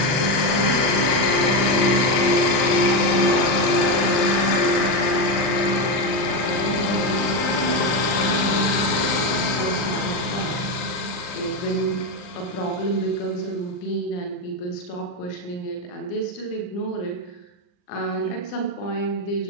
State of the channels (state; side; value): late; right; 40 ms